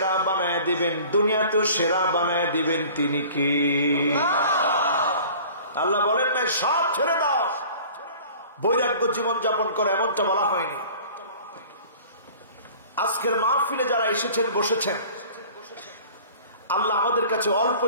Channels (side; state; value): both; inverted; correlation -0.46